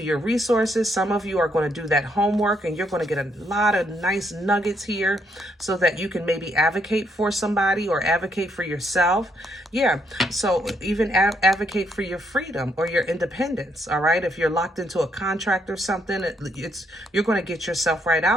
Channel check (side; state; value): both; normal; correlation 0.74